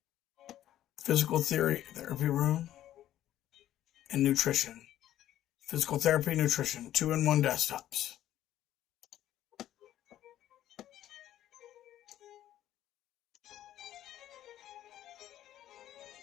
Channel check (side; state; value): right; quieter; 12.5 dB